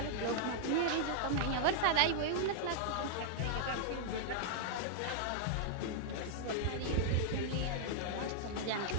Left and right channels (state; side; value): different; both; correlation -0.01